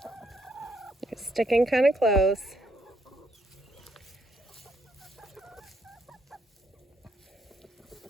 It's sticking kind of close.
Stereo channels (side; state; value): both; normal; correlation 0.73